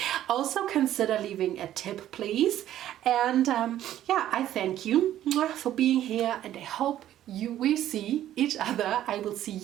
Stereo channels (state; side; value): quieter; left; 12.4 dB